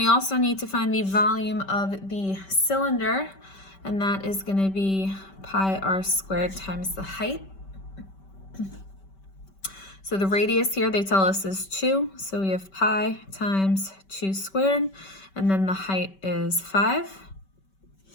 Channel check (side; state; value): right; late; 5.2 ms